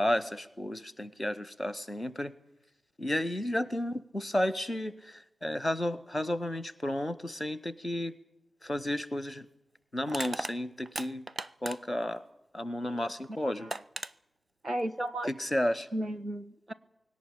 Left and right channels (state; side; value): normal; both; correlation 0.94